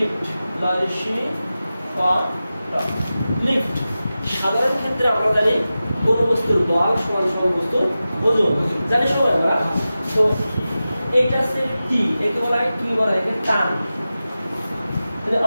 লিফট। সাধারণ ক্ষেত্রে আমরা জানি কোন বস্তুর বল সমান সমান বস্তুর ওজন, জানি সবাই আমরা। তো এইটা হচ্ছে টি, একে বলা হয় কি বলা হয়? এটা টান।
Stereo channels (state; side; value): inverted; both; correlation -0.94